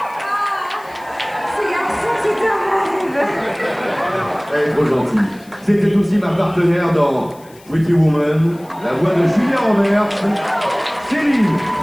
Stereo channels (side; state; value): left; noise; hiss, 26 dB below the sound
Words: Ce garçon, c'est un rêve. Elle est trop gentille. C'était aussi ma partenaire dans Pretty Woman, la voix de Julia Roberts, Céline